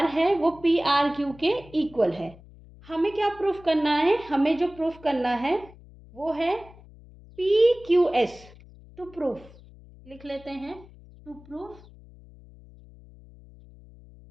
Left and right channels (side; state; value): left; noise; hum, 22 dB below the sound